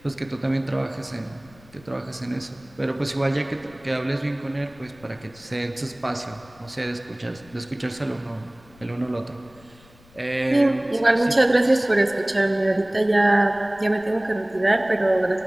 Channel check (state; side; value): noise; left; rumble, 26 dB below the sound